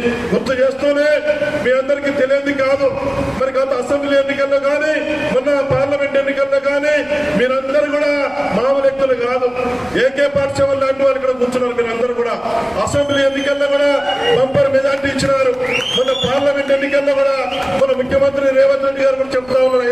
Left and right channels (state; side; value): noise; left; rumble, 26 dB below the sound